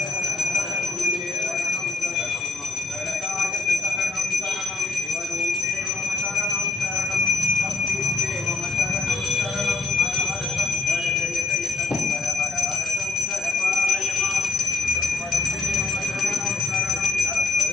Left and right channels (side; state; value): right; quieter; 3.8 dB